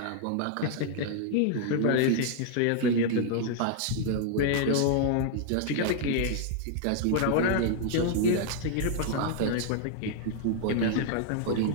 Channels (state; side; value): different; both; correlation 0.00